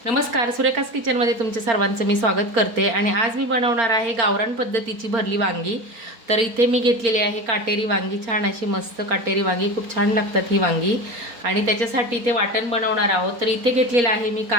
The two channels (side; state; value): left; late; 4.4 ms